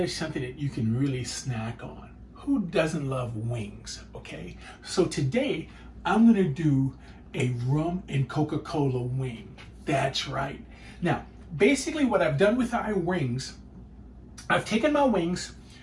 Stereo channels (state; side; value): identical; both; correlation 1.00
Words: that you can really snack on. Who doesn't love wings, okay? So today, I'm going to do a rum and Coca-Cola wing. That's right. Now, basically what I've done with our wings, I've taken my wings,